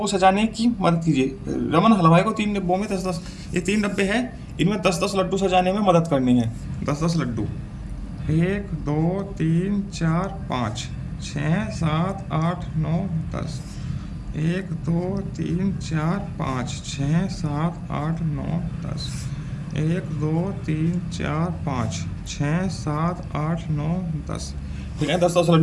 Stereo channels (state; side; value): identical; both; correlation 1.00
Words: सजाने की मदद कीजिए। रमन हलवाई को 3 डब्बों में 10-10, ये 3 डब्बे हैं, इनमें 10-10 लड्डू सजाने में मदद करनी है। 10-10 लड्डू, 1 2 3 4 5 6 7 8 9 10। 1 2 3 4 5 6 7 8 9 10। 1 2 3 4 5 6 7 8 9 10। ठीक है, 10-10